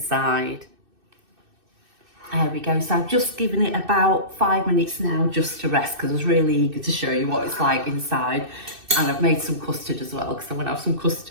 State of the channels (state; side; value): late; left; 2.6 ms